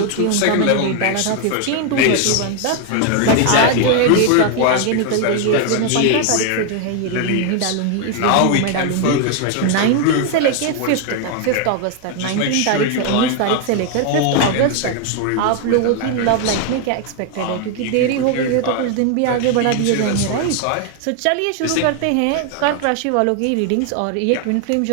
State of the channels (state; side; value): different; both; correlation 0.00